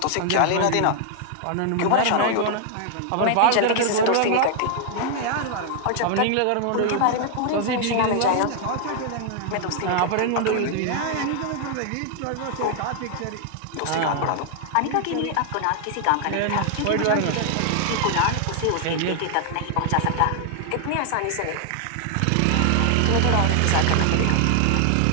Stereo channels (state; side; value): different; both; correlation 0.00